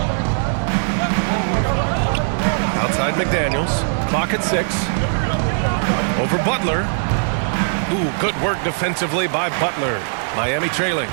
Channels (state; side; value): silent; left; 59 dB below the other